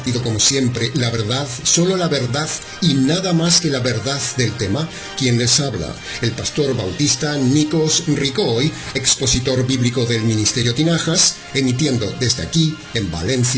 como siempre la verdad, solo la verdad y nada más que la verdad del tema. Quien les habla, el pastor bautista Nikos Ricoy, expositor bíblico del Ministerio Tinajas, emitiendo desde aquí, en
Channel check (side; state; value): both; identical; correlation 1.00